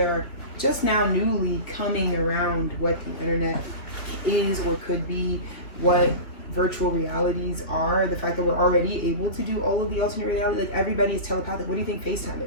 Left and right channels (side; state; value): right; late; 2.2 ms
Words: just now newly coming around what the internet is or could be, what virtual realities are, the fact that we're already able to do all of the alternate reality, like everybody is telepathic. What do you think FaceTime